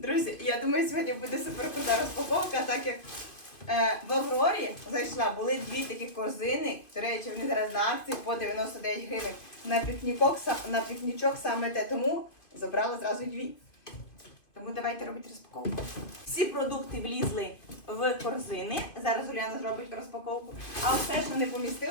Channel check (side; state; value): right; late; 2.4 ms